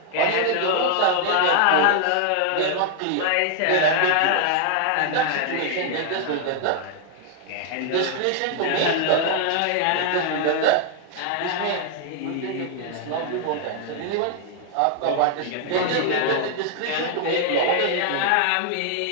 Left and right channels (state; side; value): different; both; correlation 0.00